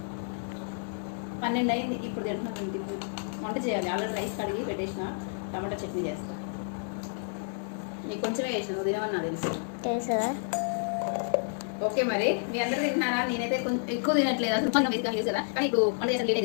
12 అయింది. ఇప్పుడు తింటున్నాం. ఇంటికి వంట చేయాలి. ఆల్రెడీ రైస్ కడిగి పెట్టేసిన. టమాటా చట్నీ చేస్తా. నీకు కొంచెమే వేసిన, నువ్వు తినవని నాకు తెలుసు. ఓకే మరి మీ అందరూ తింటున్నారా? నేనైతే కొంచెం ఎక్కువ తినట్లేదు. అసలు కొంచెం వేసుకొని లేదు కదా, కానీ ఇప్పుడు వంట చేసిన లేటే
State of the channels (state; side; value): silent; right; digital silence